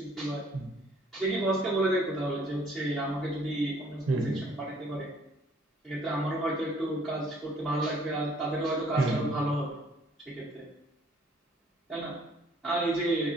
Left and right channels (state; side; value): normal; both; correlation 0.60